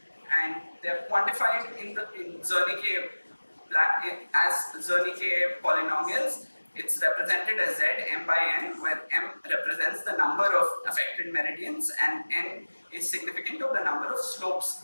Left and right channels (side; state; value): both; inverted; correlation -1.00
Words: and they are quantified in Zernike as Zernike polynomials. It's represented as Z m by n, where m represents the number of affected meridians and n is significant of the number of